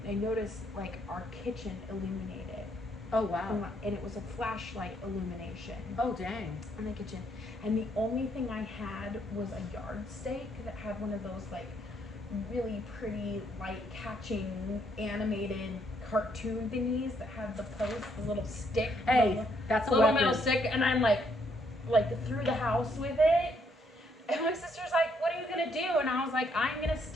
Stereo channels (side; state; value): both; normal; correlation 0.72